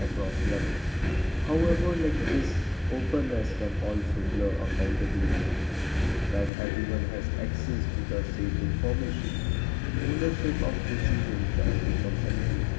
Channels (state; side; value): drops out; right; at 6.5 s